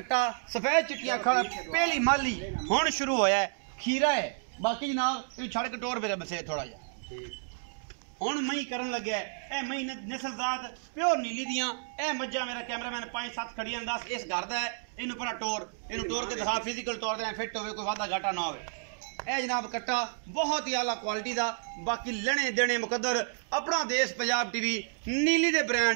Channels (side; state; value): left; silent; digital silence